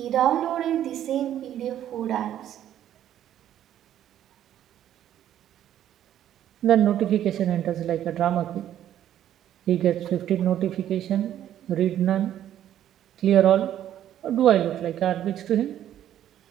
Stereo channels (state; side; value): quieter; left; 11.3 dB